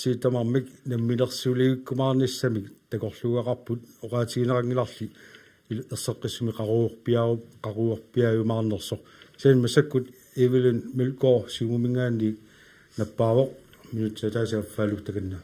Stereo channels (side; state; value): both; identical; correlation 1.00